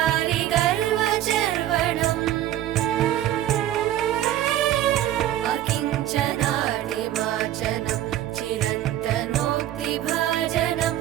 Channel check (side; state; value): left; quieter; 12.8 dB